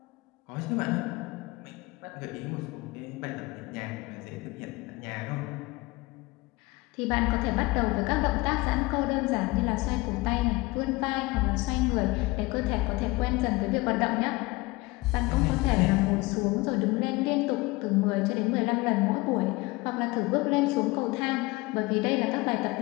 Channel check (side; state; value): right; quieter; 22.7 dB